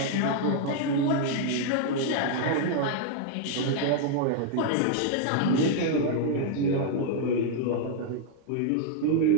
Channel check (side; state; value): both; different; correlation 0.00